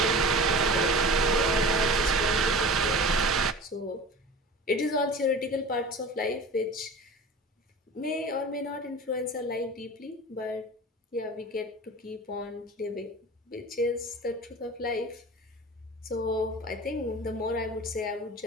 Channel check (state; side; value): normal; both; correlation 0.36